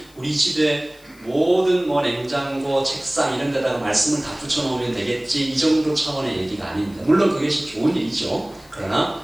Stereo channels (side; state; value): left; noise; hiss, 27 dB below the sound